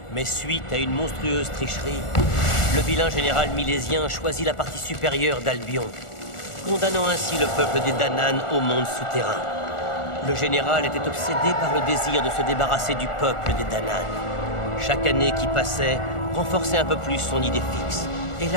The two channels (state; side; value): late; right; 1.4 ms